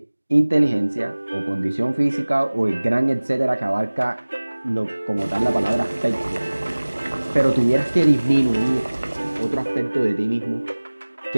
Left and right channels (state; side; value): inverted; both; correlation -1.00